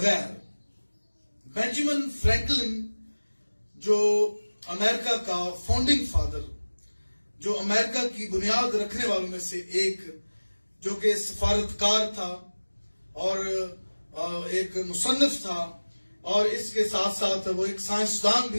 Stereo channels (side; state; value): both; inverted; correlation -1.00